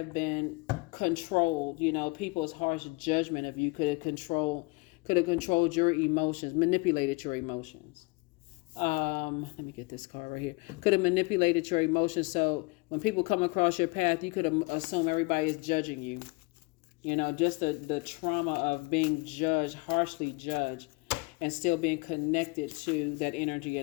been controlled. You know, people's harsh judgment of you could have controlled your emotions, manipulated your emotions. Let me get this card right here. Could have manipulated your emotions. So when people come across your path, you could assume everybody is judging you. You know, just the trauma of being judged, harshly judged, and still being connected to that energy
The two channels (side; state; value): right; quieter; 26.3 dB